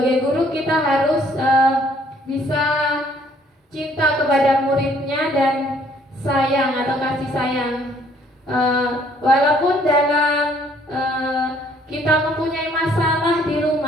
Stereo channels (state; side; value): normal; both; correlation 0.62